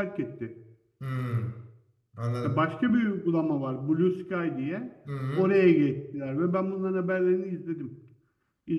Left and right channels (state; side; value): identical; both; correlation 1.00